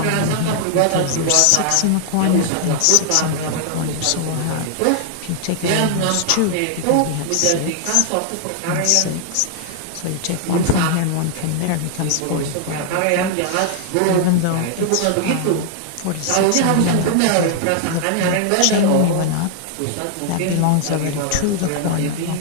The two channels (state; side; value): different; both; correlation 0.00